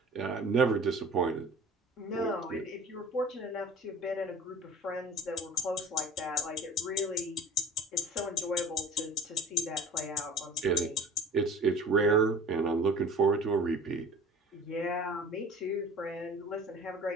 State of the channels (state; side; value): normal; both; correlation 0.41